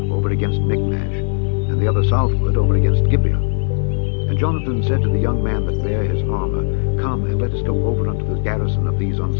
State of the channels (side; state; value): right; silent; 67 dB below the other